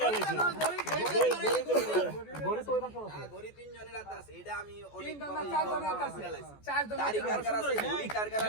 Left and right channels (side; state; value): right; late; 14 ms